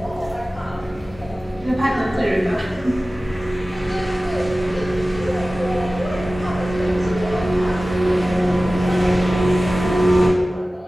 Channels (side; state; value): both; normal; correlation 0.97